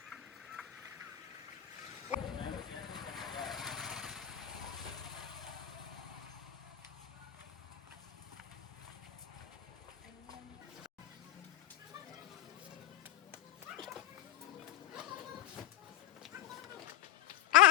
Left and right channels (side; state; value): right; quieter; 13.4 dB